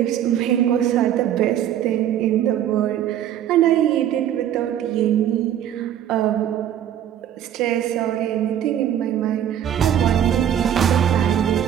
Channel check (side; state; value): left; quieter; 10.4 dB